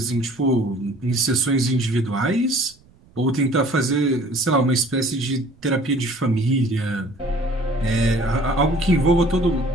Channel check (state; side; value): noise; right; rumble, 29 dB below the sound